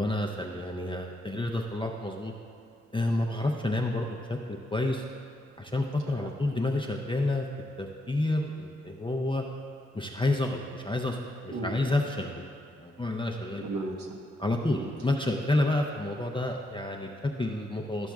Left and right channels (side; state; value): both; normal; correlation 0.80